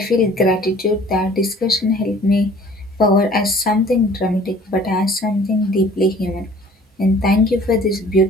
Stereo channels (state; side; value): normal; both; correlation 0.51